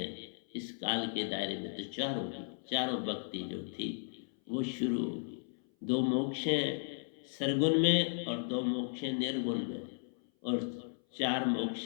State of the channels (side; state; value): right; silent; 54 dB below the other